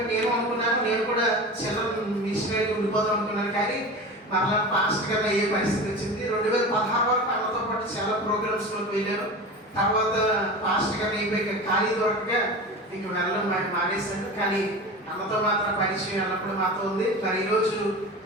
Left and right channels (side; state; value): both; normal; correlation 0.31